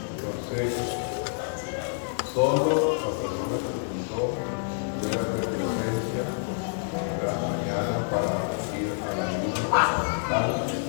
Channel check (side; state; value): right; silent; 56 dB below the other